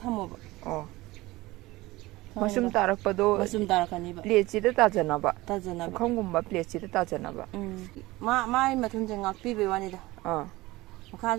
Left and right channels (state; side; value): quieter; left; 19.6 dB